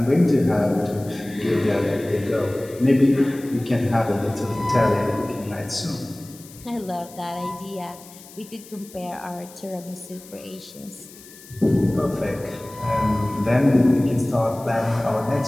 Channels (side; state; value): left; noise; hiss, 20 dB below the sound